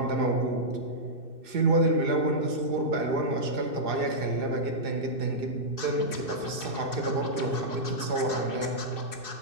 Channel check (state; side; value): late; left; 2.6 ms